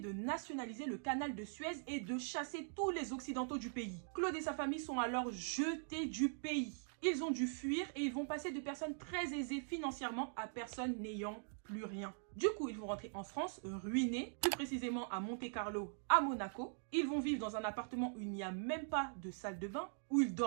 nationaliser le canal de Suez et de chasser tous les occidentaux du pays. Claude et sa famille sont alors jetés du pays. Ils ont dû fuir et ils vont passer de personnes très aisées financièrement à personnes n'ayant plus rien. Du coup, ils vont rentrer en France, ruinés, plus précisément à Monte-Carlo, à Monaco. Ils vont vivre dans un appartement où il n'y a même pas de salle de bain, où ils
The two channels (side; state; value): left; silent; digital silence